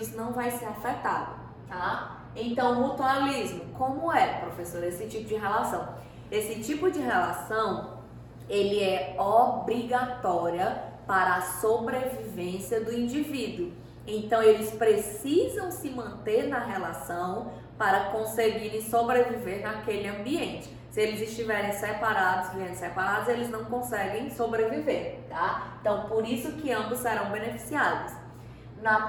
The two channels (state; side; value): identical; both; correlation 1.00